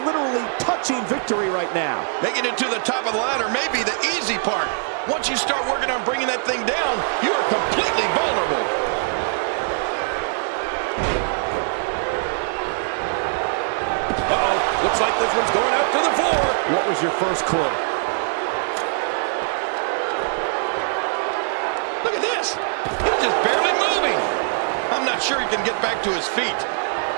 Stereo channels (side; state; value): left; silent; 64 dB below the other